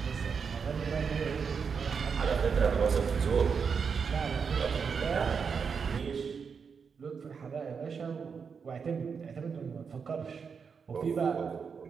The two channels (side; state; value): left; quieter; 6.0 dB